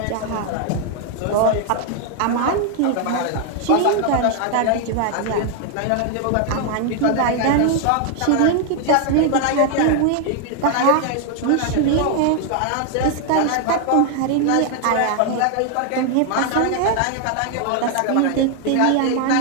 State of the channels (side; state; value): both; different; correlation 0.00